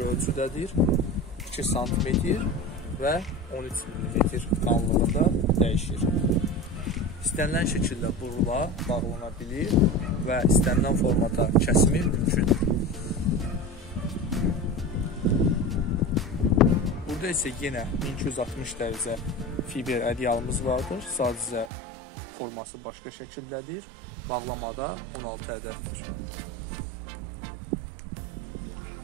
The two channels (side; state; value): left; drops out; at 21.7 s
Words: ölçüdədir, 2 sm və 13 mm qalınlığında dəyişir. İstənilən şəkildə burula, bağlana bilir və istənilən formata kəsimi mümkündür. Burada isə yenə 1260 dərəcə fiber ədyalımız vardır. Sadəcə forması başqa şəkildədir. Bağlamada 16 ədəddir.